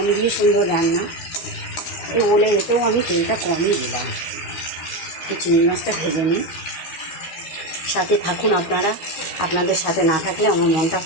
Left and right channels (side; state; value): right; late; 13 ms